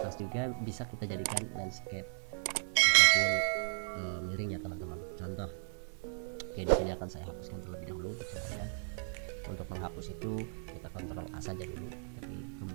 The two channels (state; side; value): silent; left; 54 dB below the other